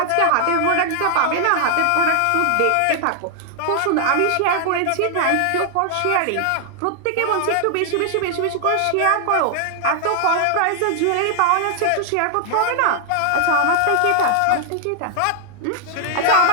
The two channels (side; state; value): both; different; correlation 0.00